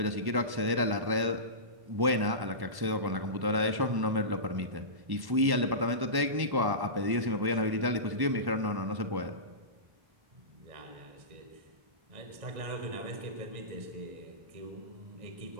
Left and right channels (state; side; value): late; left; 1.1 ms